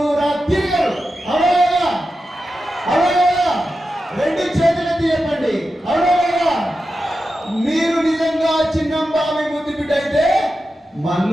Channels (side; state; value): both; normal; correlation 0.91